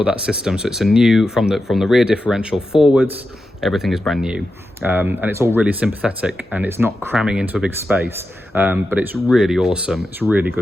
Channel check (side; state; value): both; normal; correlation 0.90